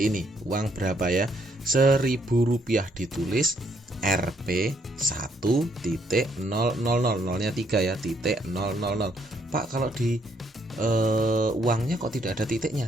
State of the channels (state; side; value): normal; both; correlation 0.71